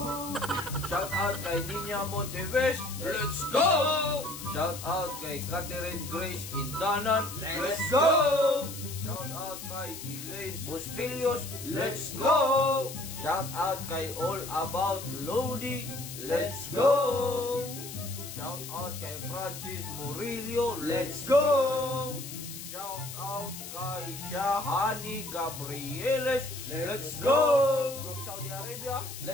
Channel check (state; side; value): noise; left; hiss, 10 dB below the sound